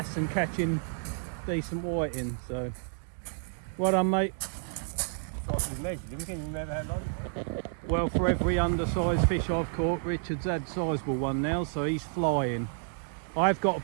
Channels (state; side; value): silent; left; digital silence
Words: and catching decent whiting, so well done, mate. Well, for every undersized fish I've caught, Richard's had a sizable one now, so he's flying. I've got a